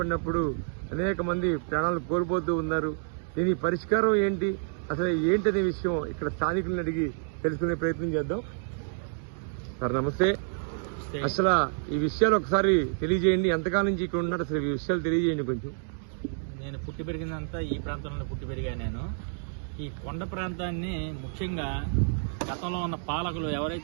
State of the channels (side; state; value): left; silent; digital silence